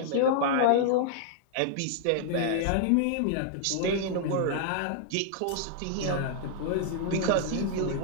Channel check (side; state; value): both; different; correlation -0.01